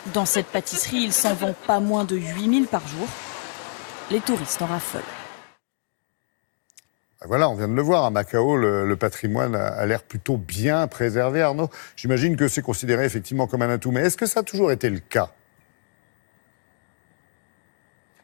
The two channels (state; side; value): silent; right; digital silence